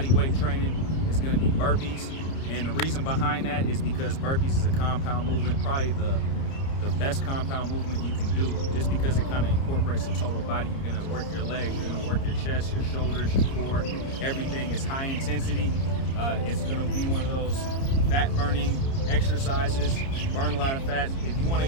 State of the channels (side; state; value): right; late; 30 ms